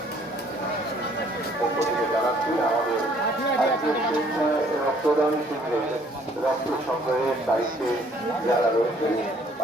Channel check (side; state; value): both; normal; correlation 0.61